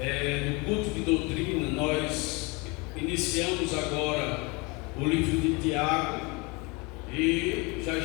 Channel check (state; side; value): quieter; right; 27.7 dB